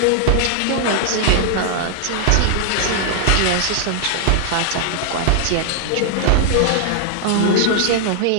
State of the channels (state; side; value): different; both; correlation 0.00